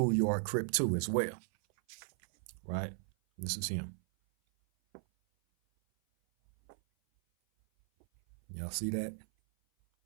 Crip too as well. Right? This is him. Y'all see that?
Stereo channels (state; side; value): silent; left; 54 dB below the other